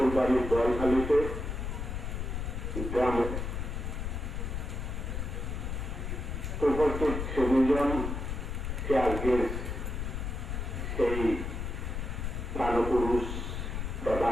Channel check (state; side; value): noise; left; rumble, 3 dB below the sound